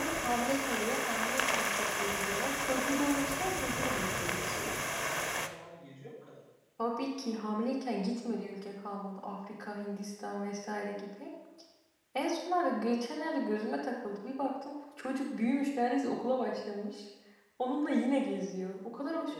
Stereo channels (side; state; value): both; identical; correlation 1.00